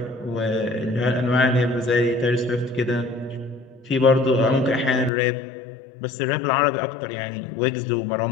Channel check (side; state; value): right; drops out; at 5.1 s